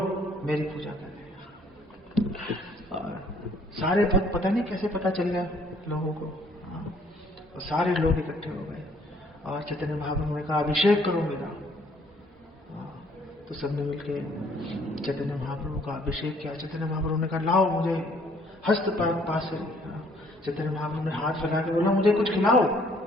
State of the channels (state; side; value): normal; both; correlation 0.62